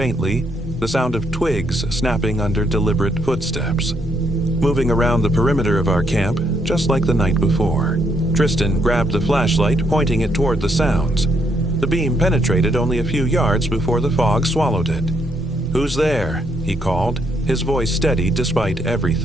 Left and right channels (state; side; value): normal; both; correlation 0.74